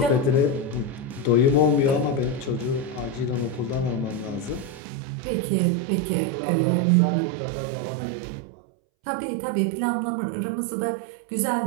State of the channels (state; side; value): drops out; left; at 4.8 s